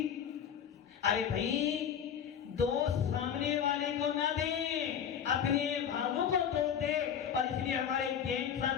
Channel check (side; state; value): right; quieter; 8.3 dB